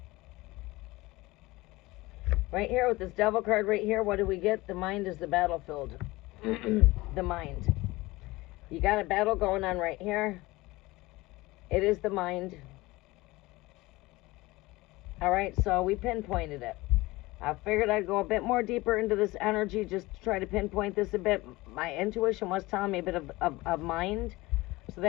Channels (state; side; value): quieter; right; 20.5 dB